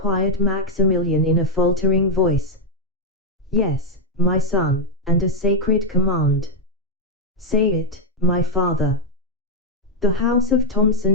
Maximilian in a faltering voice. "Yes, my son, and a sacred command." "Say it, my father." "The house of Thomson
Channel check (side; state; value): both; normal; correlation 0.01